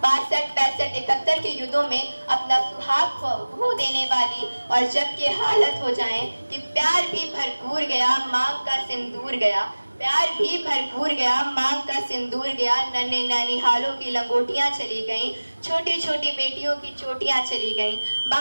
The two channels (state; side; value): inverted; both; correlation -1.00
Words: 62, 65, 71 के युद्धों में अपना सुहाग खो देने वाली और जब के हालत हो जाए कि प्यार भी भरपूर गया, मांग का सिंदूर गया। प्यार भी भरपूर गया, मांग का सिंदूर गया। नन्हे ननिहालों की लंगोटियां चली गईं, छोटी छोटी बेटियों की चोटियां चली गईं।